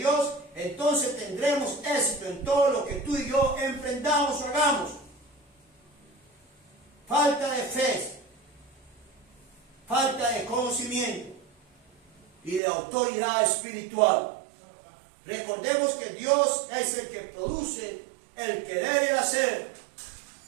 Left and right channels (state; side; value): drops out; left; at 12.6 s